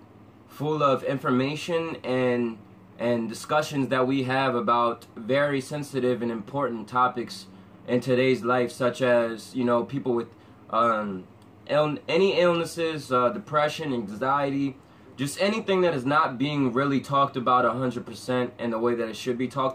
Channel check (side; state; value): both; identical; correlation 1.00